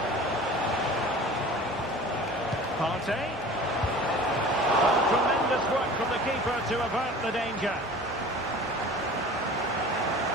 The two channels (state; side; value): normal; both; correlation 0.42